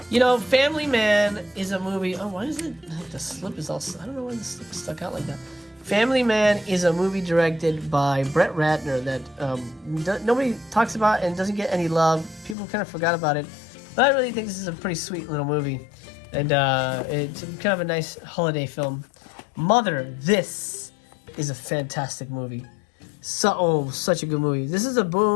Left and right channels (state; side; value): drops out; right; at 12.6 s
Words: You know, Family Man is a movie... Oh, why is it... The slip is all... I don't know why the slip is stuck out like that. Family Man is a movie directed by Brett Ratner that nobody talks about and doesn't get any love. People kind of forgot about it. But I really think this is a pretty sweet little movie. And it's kind of a nice holiday film. Mother, this is a fantastic movie. Such a good movie. This is a